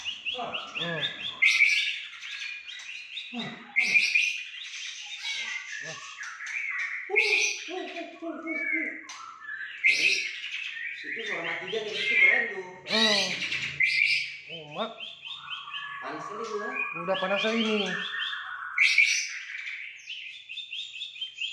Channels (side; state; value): both; identical; correlation 1.00